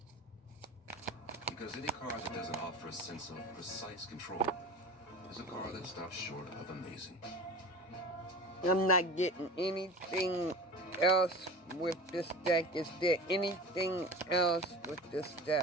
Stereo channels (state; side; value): normal; both; correlation 0.35